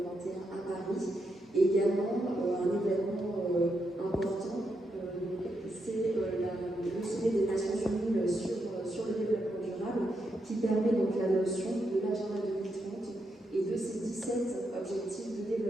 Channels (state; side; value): normal; both; correlation 0.82